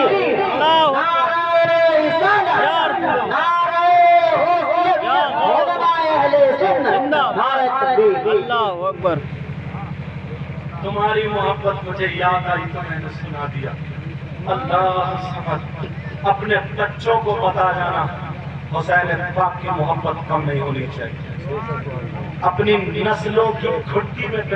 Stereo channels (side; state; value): both; identical; correlation 1.00